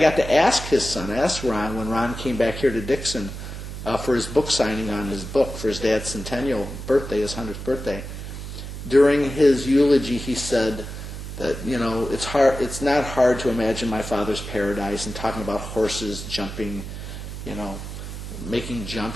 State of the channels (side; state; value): right; noise; hum, 9 dB below the sound